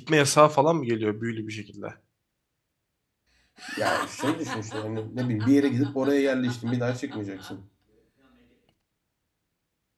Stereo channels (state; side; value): identical; both; correlation 1.00